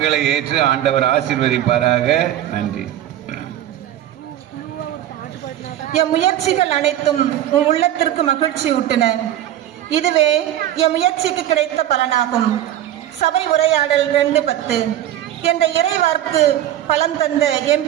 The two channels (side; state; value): left; quieter; 12.2 dB